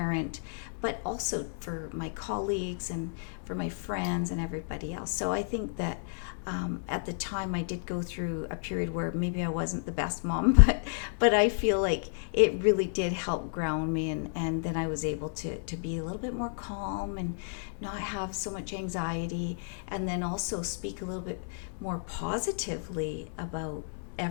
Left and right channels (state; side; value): silent; right; 57 dB below the other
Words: but also for my colleagues and for my friends and everybody else. So I think that at the time I did go through a period where maybe I wasn't the best mom, but I feel like it really did help ground me, and then I was able to be a little bit more calm and not have so much anxiety, and then also speak a little bit more positively about